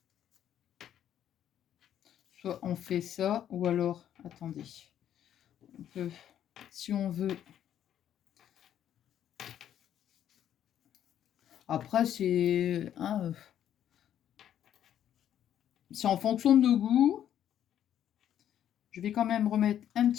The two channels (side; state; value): right; quieter; 10.4 dB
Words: Soit on fait ça, ou alors, attendez, on peut, si on veut. Après, c'est c'est en fonction de nos goûts. Je vais quand même remettre un